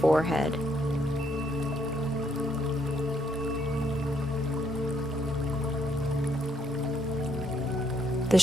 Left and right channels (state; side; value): normal; both; correlation 0.72